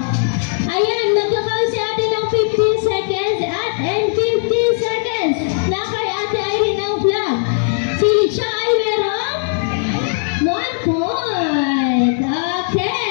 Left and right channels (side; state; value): right; silent; 61 dB below the other